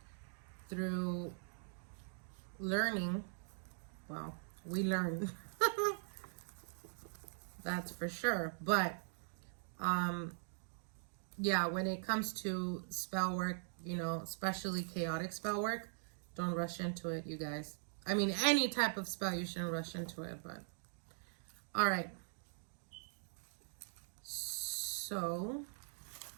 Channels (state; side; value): silent; left; digital silence